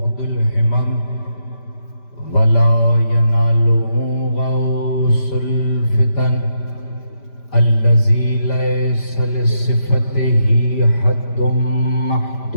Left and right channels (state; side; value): late; right; 5.1 ms